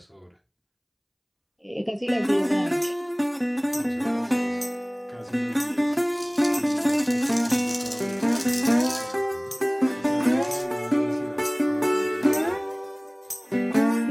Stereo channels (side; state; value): both; identical; correlation 1.00